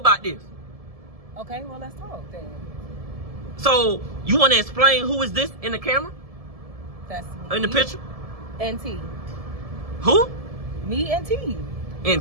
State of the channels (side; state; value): left; late; 1.7 ms